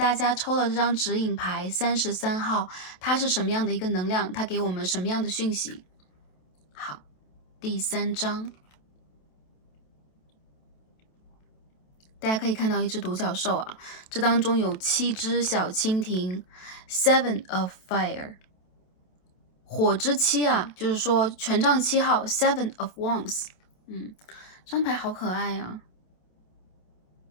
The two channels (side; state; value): right; late; 27 ms